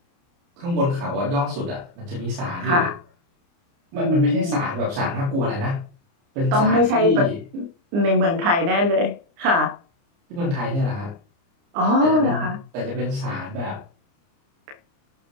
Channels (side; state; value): left; late; 29 ms